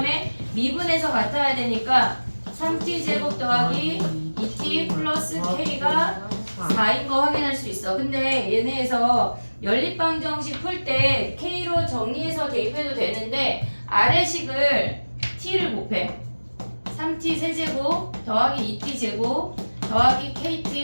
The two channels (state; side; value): inverted; both; correlation -1.00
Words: 미분에서 같아야 되니까 3t 제곱 더하기 2t 플러스 k가 4인 거 확인할 수 있어. 근데 얘네에서 연립방정식 풀 때 k로 정리해서 대입해도 되는데 아래식을 t를 곱해. 3t 세제곱 더하기 2t 제곱 더하기